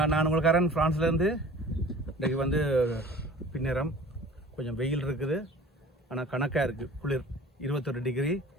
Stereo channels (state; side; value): normal; both; correlation 0.44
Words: நான் உங்களுக்காரன் ஃப்ரான்ஸ்லேருந்து. இன்றைக்கு வந்து பின்னேரம் கொஞ்சம் வெயில் இருக்குது, ஆனால் கணக்காக இருக்குது. குளிர் 21 டிகிரி.